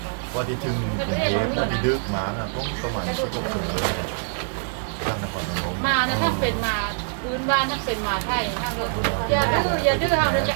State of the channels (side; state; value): left; silent; digital silence